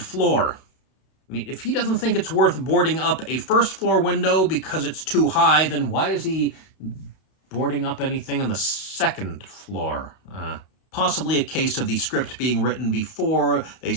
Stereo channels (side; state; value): right; late; 32 ms